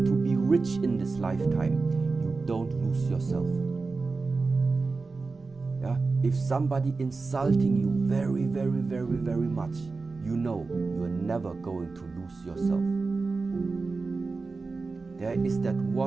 to be rich in this lifetime, you don't lose yourself. Yeah? If somebody insulting you very, very, very, very much, you know you are never going to lose yourself. There is that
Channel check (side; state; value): left; quieter; 4.0 dB